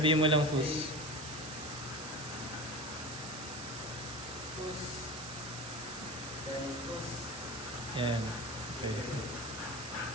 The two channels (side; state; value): right; noise; hiss, 9 dB below the sound